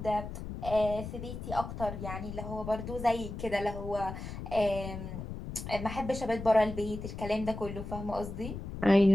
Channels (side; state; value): left; noise; rumble, 8 dB below the sound